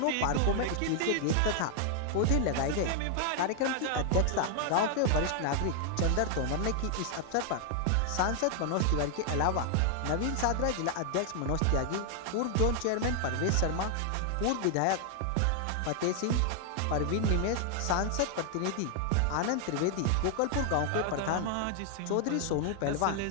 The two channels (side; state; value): both; different; correlation 0.00